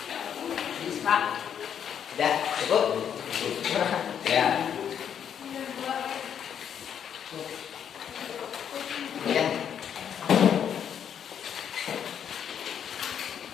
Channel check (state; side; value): quieter; right; 8.5 dB